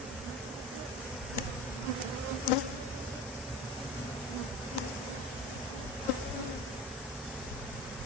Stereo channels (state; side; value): normal; both; correlation 0.32